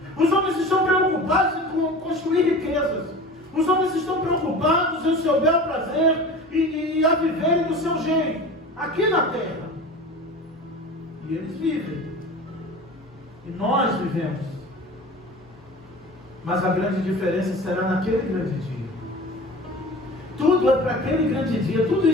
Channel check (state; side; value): normal; both; correlation 0.37